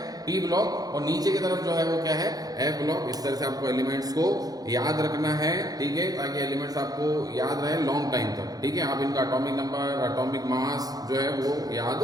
P block. और नीचे की तरफ जो है वो क्या है? F block. इस तरह से आपको एलिमेंट्स को याद रखना है। ठीक है। ताकि एलिमेंट्स आपको याद रहे लॉन्ग टाइम तक। ठीक है। आप इनका एटॉमिक नंबर, एटॉमिक मास जो है वो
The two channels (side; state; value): left; late; 0.18 ms